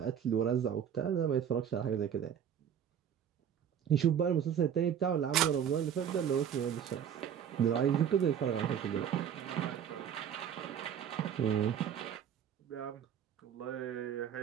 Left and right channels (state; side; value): quieter; left; 8.7 dB